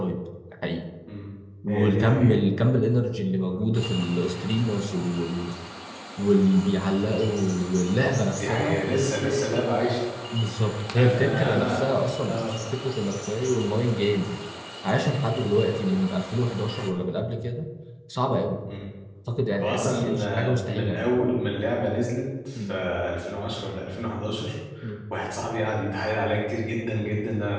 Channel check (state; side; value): identical; both; correlation 1.00